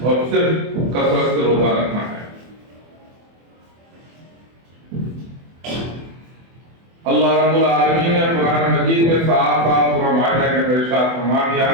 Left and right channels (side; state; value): left; late; 24 ms